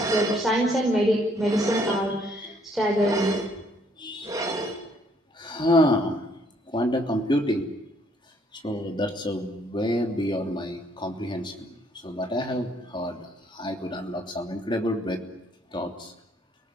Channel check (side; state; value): both; normal; correlation 0.66